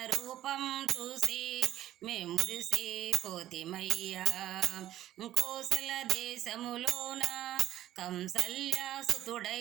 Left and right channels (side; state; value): left; quieter; 13.1 dB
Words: రూపం చూసి మే మురిసిపోతిమయ్యా. కోసల దేశములోన